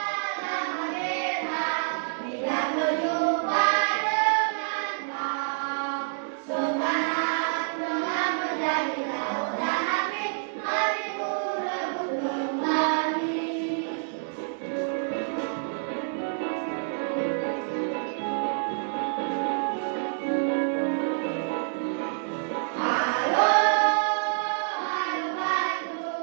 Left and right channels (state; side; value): silent; left; digital silence